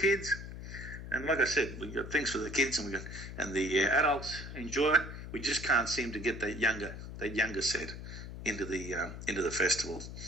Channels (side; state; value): left; noise; hum, 10 dB below the sound